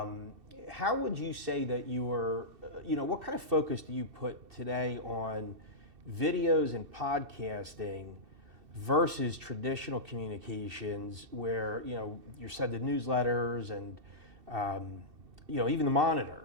How would you say that what kind of focus do you put today on videos and podcasting versus traditional communications where, you're sending newsletters and, even the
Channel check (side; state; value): left; late; 2.7 ms